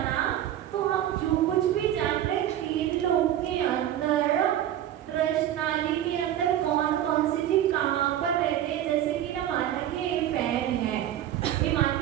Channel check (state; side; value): quieter; left; 11.7 dB